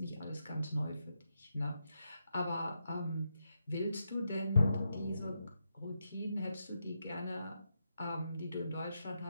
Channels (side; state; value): both; inverted; correlation -0.84